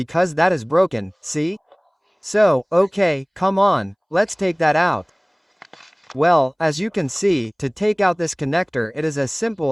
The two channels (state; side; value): identical; both; correlation 1.00